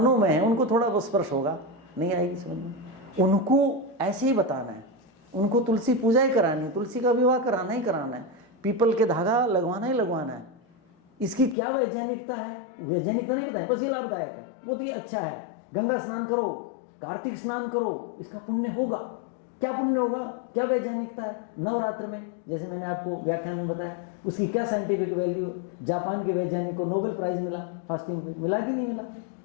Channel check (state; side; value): drops out; right; at 11.6 s